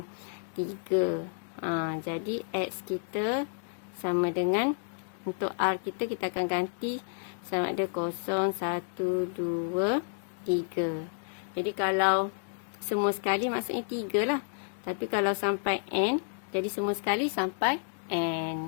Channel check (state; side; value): silent; right; 57 dB below the other